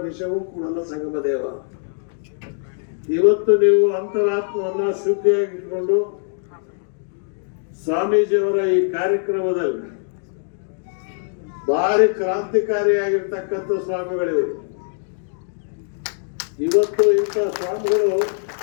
ವಿಷವೂ ಕೂಡಲ ಸಂಗಮದೇವ. ಇವತ್ತು ನೀವು ಅಂತರಾತ್ಮವನ್ನ ಶುದ್ಧಿಯಾಗಿಟ್ಕೊಂಡು ಸ್ವಾಮೀಜಿಯವರ ಈ ಕಾರ್ಯಕ್ರಮದಲ್ಲಿ ಭಾರಿ ಕ್ರಾಂತಿಕಾರಿಯಾಗಿರ್ತಕ್ಕಂಥ ಸ್ವಾಮಿಗಳಿವೆ. ಇವತ್ತು ಇಂಥ ಸ್ವಾಮಿಗಳು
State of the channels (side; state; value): right; silent; digital silence